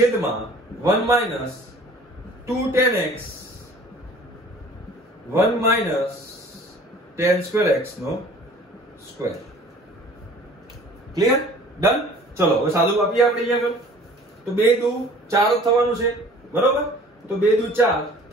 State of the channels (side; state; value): both; normal; correlation 0.49